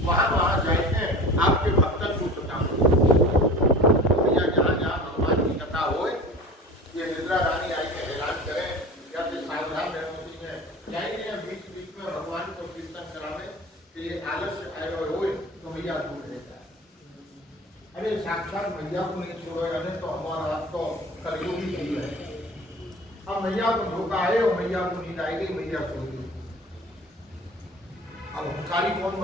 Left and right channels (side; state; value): both; normal; correlation 0.39